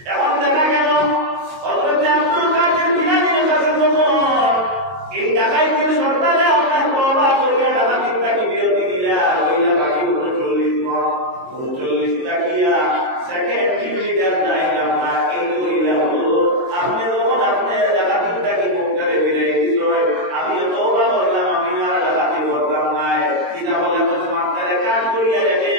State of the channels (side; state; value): left; late; 22 ms